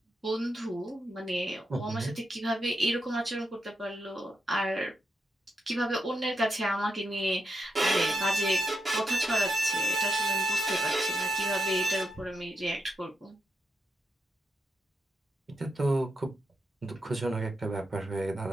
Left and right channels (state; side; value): normal; both; correlation 0.83